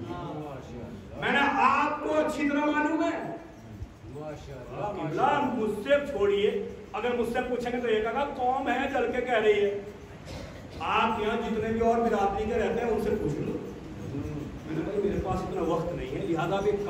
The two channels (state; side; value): identical; both; correlation 1.00